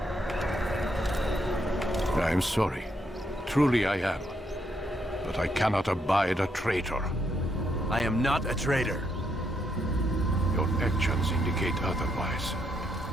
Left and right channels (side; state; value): both; normal; correlation 0.76